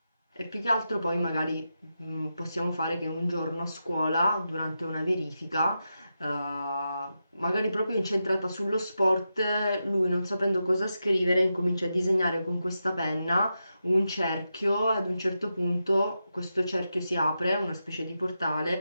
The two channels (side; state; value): both; inverted; correlation -0.88